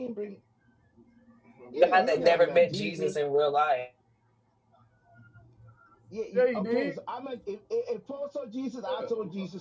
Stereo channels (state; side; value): identical; both; correlation 1.00